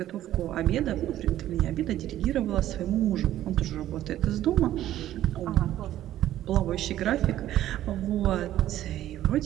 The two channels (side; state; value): left; quieter; 13.0 dB